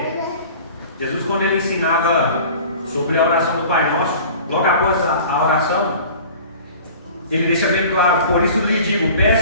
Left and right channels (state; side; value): inverted; both; correlation -0.43